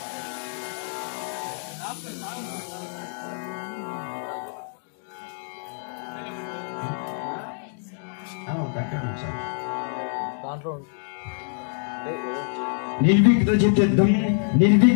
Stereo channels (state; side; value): silent; right; 61 dB below the other